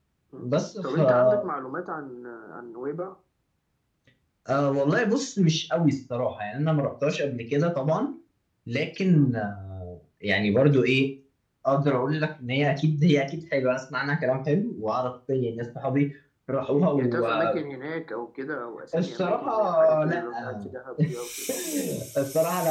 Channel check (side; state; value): both; identical; correlation 1.00